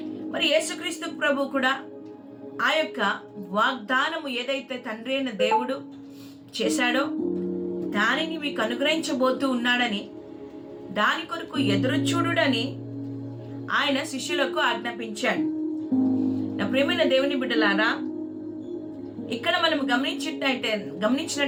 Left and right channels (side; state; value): both; identical; correlation 1.00